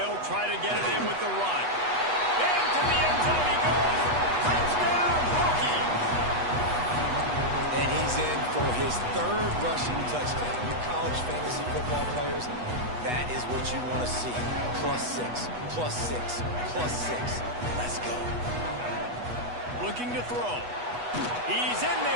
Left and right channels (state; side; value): late; left; 8.2 ms